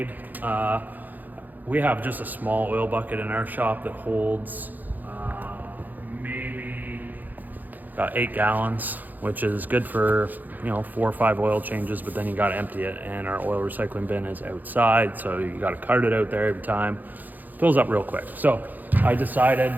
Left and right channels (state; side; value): late; left; 0.084 ms